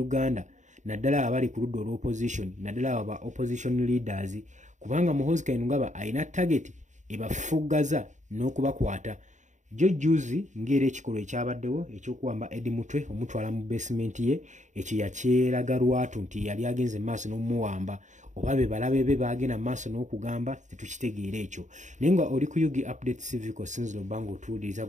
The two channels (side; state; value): left; late; 0.35 ms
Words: naddala abali ku ludda olw'opposition naddala aba opposition leaders kubanga Muhoozi Kayingo ayina target ebafuggaza n'okubakwata. Juzi ng'era ekikolwa ekyabaddewo ekyokuwamba Eddie Mutwe omutwala mu basement ye ekyo yakyeraga lwatu nti yali agenze maaso n'omuwamba oba be balabe be bagenda maaso n'okugamba tetukitegeera ekyo. Naye nga oli ku Yugi Updates Civic osinzira obanga otuwuliriza